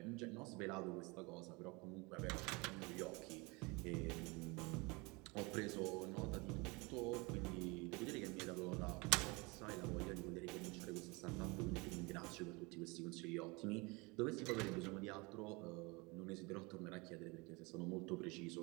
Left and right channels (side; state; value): left; quieter; 26.6 dB